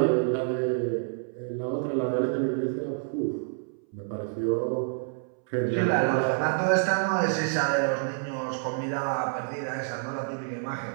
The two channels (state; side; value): silent; left; 59 dB below the other